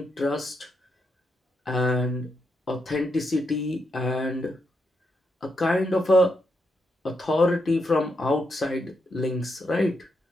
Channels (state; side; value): normal; both; correlation 0.81